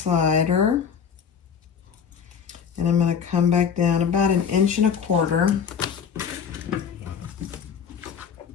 and I'm going to come back down about 1.25 inches,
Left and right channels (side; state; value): right; quieter; 7.0 dB